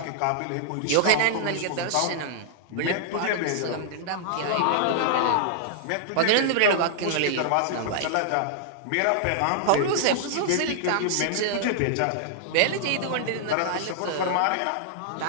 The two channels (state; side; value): different; both; correlation -0.01